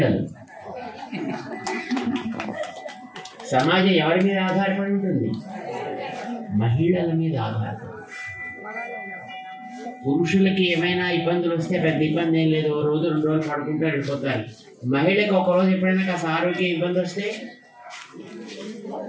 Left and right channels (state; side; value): identical; both; correlation 1.00